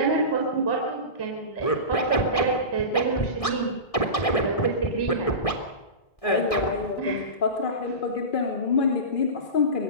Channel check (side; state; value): right; late; 1.6 ms